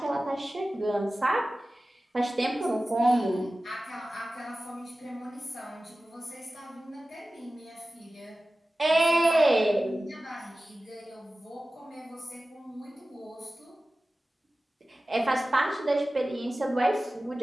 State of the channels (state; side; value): normal; both; correlation 0.96